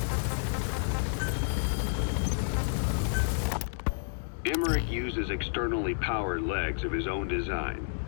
Emmerich uses externally powered legs of his own design.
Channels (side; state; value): right; silent; digital silence